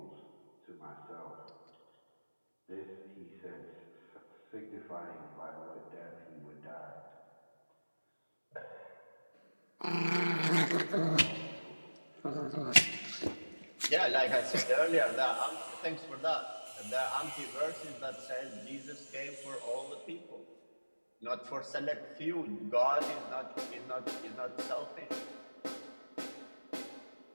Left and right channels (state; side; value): inverted; both; correlation -1.00